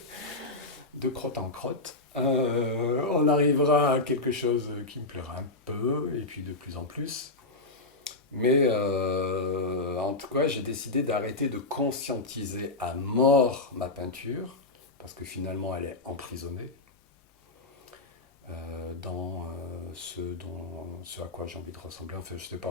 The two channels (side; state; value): right; quieter; 3.1 dB